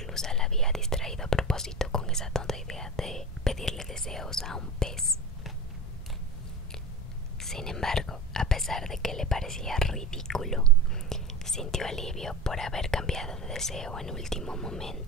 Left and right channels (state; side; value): normal; both; correlation 0.29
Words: la había distraído a propósito con esa tonta idea de pedirle deseos a un pez. Sin embargo, a pesar de que le parecía ridículo, sintió alivio por haber cambiado de deseo en último